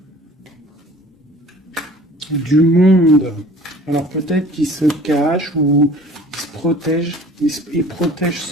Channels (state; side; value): normal; both; correlation 0.47